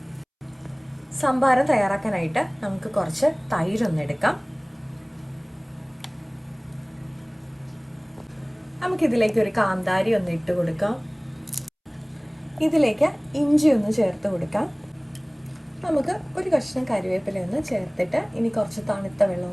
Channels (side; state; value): both; identical; correlation 1.00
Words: സംഭാരം തയ്യാറാക്കാനായിട്ട് നമുക്ക് കുറച്ച് തൈരൊന്ന് എടുക്കാം. നമുക്കിതിലേക്ക് ഒരു കാന്താരി ഒന്ന് ഇട്ട് കൊടുക്കാം. ഇതിലേക്ക് ഇഞ്ചി ഒന്ന് ചേർത്ത് കൊടുക്കാം. നമുക്ക് ഒരു കഷ്ണം കറിവേപ്പില ഒന്ന് ചേർത്തിട്ട് ഇനി കുറച്ച് തണുത്ത വെള്ളം